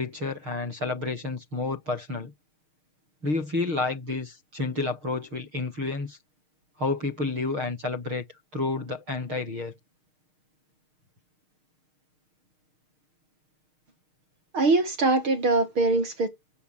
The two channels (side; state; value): left; late; 6.5 ms